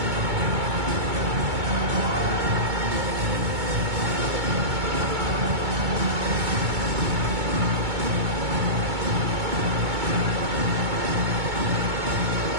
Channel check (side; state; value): left; late; 2.2 ms